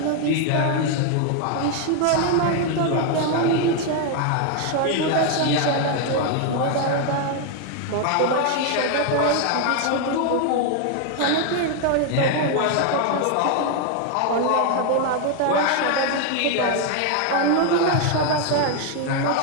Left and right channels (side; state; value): both; different; correlation 0.01